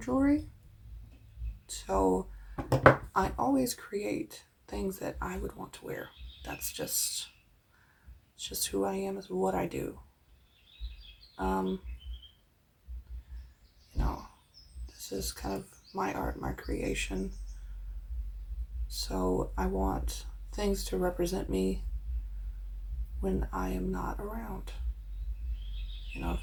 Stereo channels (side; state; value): both; identical; correlation 1.00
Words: jewelry, so I always create things that I would want to wear. That's just who I am. Is what I do. You know, this is kind of my art, my creation. So I want things to represent me when I am not around. You know,